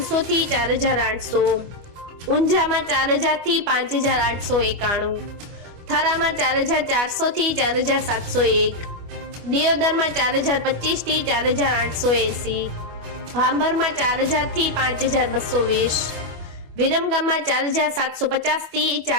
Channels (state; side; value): late; left; 25 ms